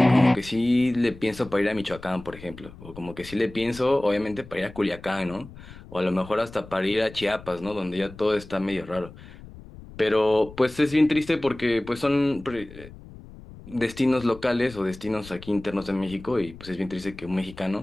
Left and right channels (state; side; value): noise; left; rumble, 17 dB below the sound